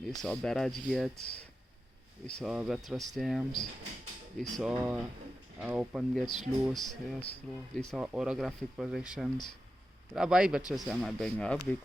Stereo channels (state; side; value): normal; both; correlation 0.91